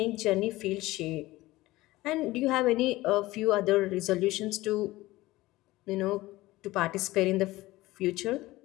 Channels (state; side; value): quieter; right; 18.4 dB